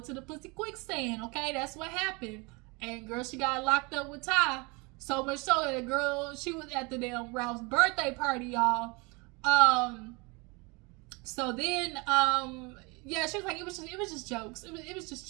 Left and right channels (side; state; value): left; quieter; 28.1 dB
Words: the pussy quicksand, okay? That's what happened. And girl, she got locked up with Ty. So much so that the girl, she was at the damn Ralph's birthday party, y'all. So then, yeah, she was like, it was just jokes. It was just